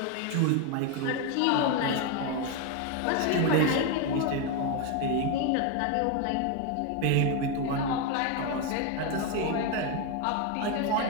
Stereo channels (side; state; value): both; different; correlation 0.02